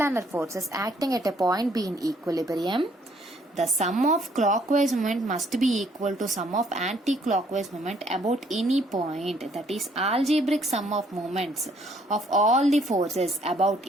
forces acting at a point be in equilibrium, the sum of clockwise moment must be equal to sum of anti-clockwise moment about any point. That is, algebraic sum of moments of all the forces about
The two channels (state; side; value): normal; both; correlation 0.65